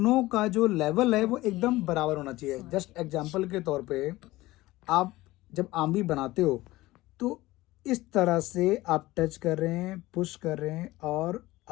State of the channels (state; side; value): quieter; right; 18.4 dB